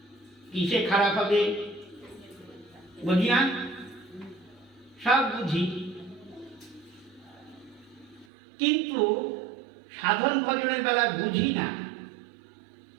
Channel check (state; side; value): drops out; left; at 8.2 s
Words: কিসে খারাপ হবে বুঝি না? সব বুঝি, কিন্তু সাধন ভজনের বেলা বুঝি না।